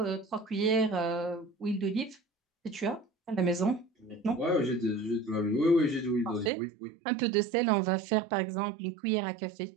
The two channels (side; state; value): left; drops out; at 6.5 s